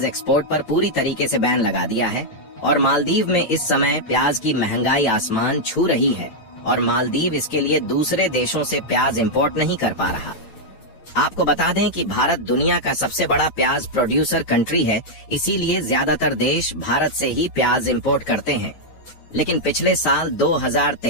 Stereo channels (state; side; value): late; right; 9.0 ms